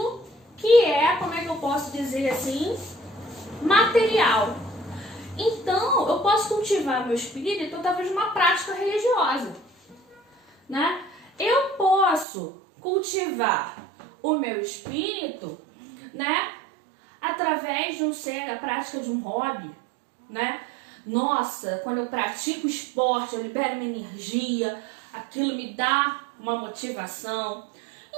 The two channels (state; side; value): drops out; left; at 12.2 s